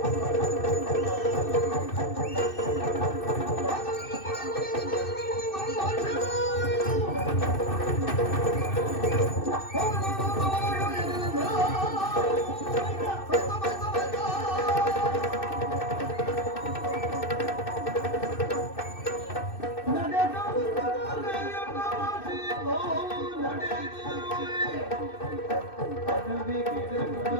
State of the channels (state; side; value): late; right; 2.6 ms